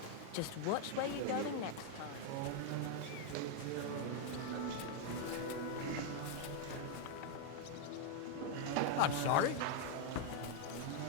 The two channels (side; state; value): both; different; correlation 0.00